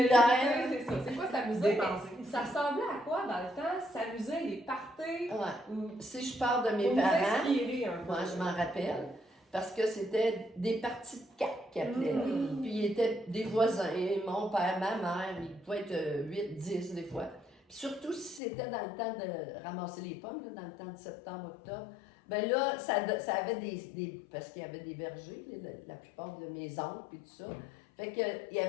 C'est ça. C'est quoi s'amuser? Dépenser. Mais ça ressemblait à quoi dans le temps? S'amuser, les parties? Ouais. Ou Si je parle de mes pour nous parents, inspirer un peu. moi, je m'en rappelle, parce que c'était des parties de cartes qu'ils appelaient. là. Mhm. Puis ils étaient des voisins, mon père, ma mère, ils pouvaient être 8, 10 des fois. Puis surtout si c'était dans le temps de ramasser les pommes, là, dans le temps de septembre, octobre, ben là, ça avait des parce qu'il y avait des vergers, la plupart de mes oncles et tout ça. Fait que il y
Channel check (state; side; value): drops out; right; at 18.4 s